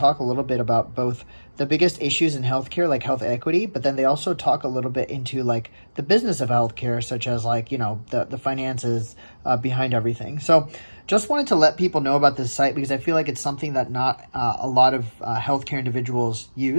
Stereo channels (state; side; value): inverted; both; correlation -1.00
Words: a little bit about both the biggest issues in healthcare, like health equity, but then they also talk a little bit into like the business of healthcare, such as like, you know, the finances behind everything. So just wanted to let people know about this site because I feel like it's something that not a lot of healthcare individuals